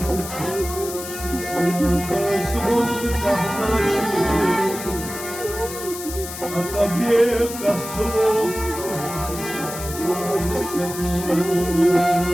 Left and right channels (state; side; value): noise; left; hiss, 10 dB below the sound